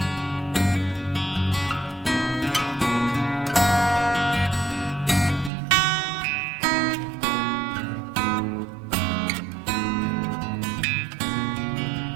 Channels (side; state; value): left; drops out; at 5.5 s